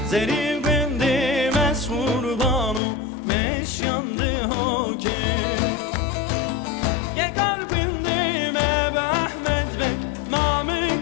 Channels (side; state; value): right; drops out; at 2.8 s